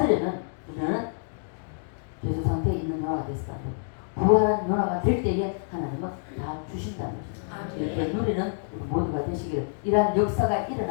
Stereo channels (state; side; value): silent; right; digital silence